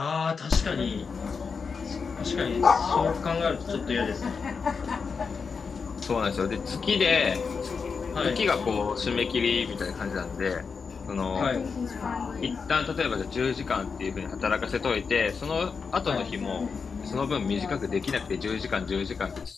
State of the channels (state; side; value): quieter; right; 5.4 dB